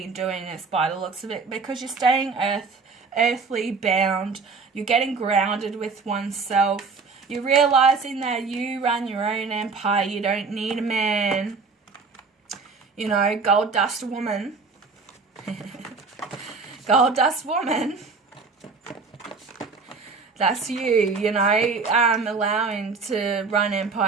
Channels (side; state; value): left; quieter; 4.5 dB